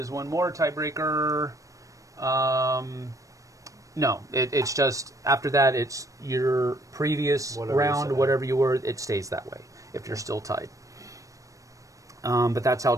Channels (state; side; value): late; left; 0.16 ms